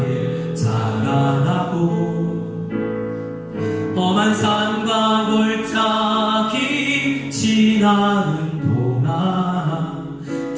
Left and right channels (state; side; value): identical; both; correlation 1.00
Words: 자라나고 험한 산과 골짜기 지나는 동안